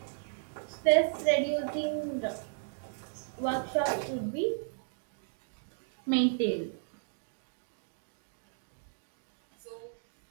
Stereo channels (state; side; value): silent; left; digital silence